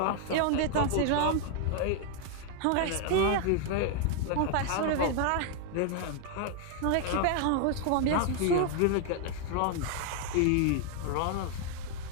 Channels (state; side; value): different; both; correlation 0.00